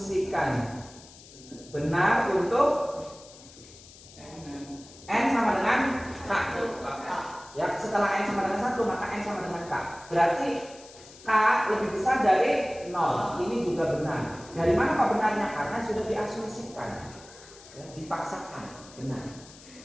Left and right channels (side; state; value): left; noise; hiss, 20 dB below the sound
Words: benar untuk N sama dengan K. Ya, setelah N sama dengan 1 maka N sama dengan K. Berarti K lebih besar dari 0. Ini juga benar. Dari mana Pak benarnya? Karena sudah diasumsikan. Ya, dipaksakan benar.